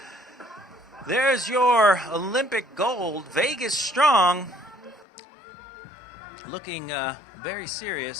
There's your Olympic gold, Vegas Strong, looking very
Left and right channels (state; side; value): drops out; right; at 5.1 s